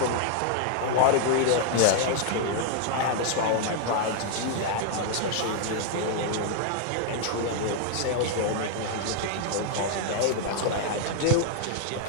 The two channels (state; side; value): different; both; correlation 0.00